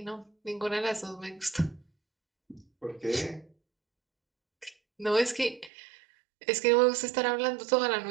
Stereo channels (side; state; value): left; drops out; at 5.7 s